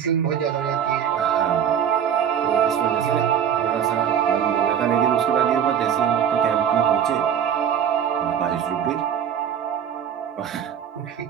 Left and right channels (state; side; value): quieter; left; 8.6 dB